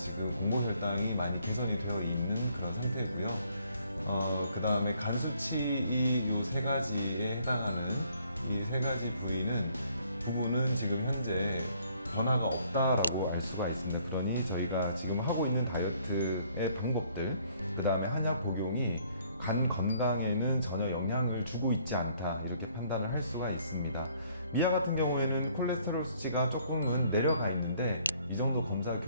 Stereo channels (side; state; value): both; inverted; correlation -0.64